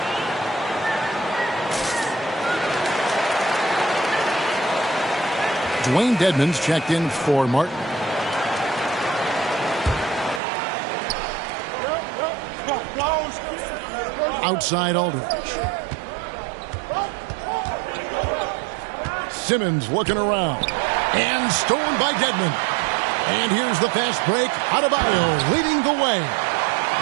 Dwayne Dedmon's checked in for Martin. Outside Aldridge. Simmons looking around. And stolen by Dedmon. And here's the fast break. Adebayo leading the way.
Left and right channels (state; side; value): drops out; left; at 10.4 s